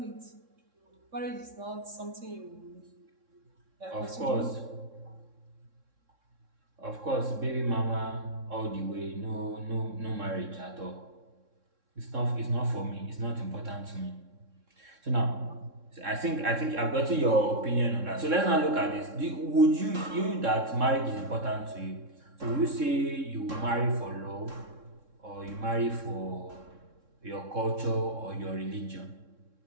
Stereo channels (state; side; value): late; left; 3.6 ms